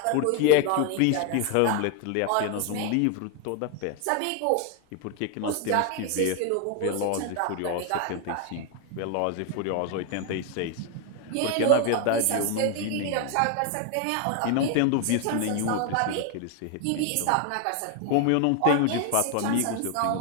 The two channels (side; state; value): both; different; correlation 0.00